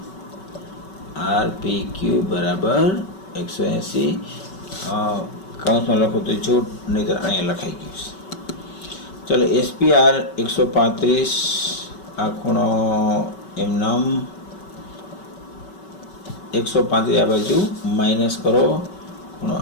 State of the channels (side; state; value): right; late; 5.3 ms